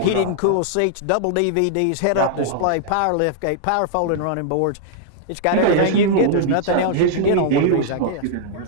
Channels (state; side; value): different; both; correlation -0.01